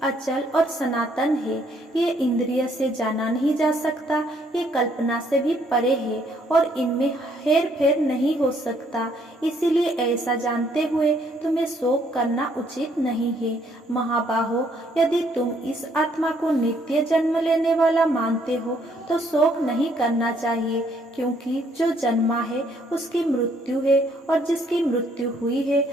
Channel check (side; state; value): both; normal; correlation 0.67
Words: अचल और सनातन है। ये इंद्रिय से जाना नहीं जा सकता, ये कल्पना से भी परे है और इनमें हेर फेर नहीं हो सकता। इसीलिए ऐसा जानते हुए तुम्हें शोक करना उचित नहीं है। महाबाहो, यदि तुम इस आत्मा को नित्य जन्म लेने वाला मानते हो तो शोक नहीं करना चाहिए, क्योंकि जो जन्मा है उसकी मृत्यु है और जिसकी मृत्यु हुई है